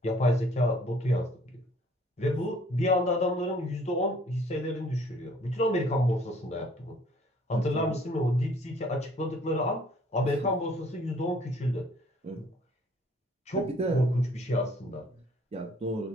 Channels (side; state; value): both; normal; correlation 0.58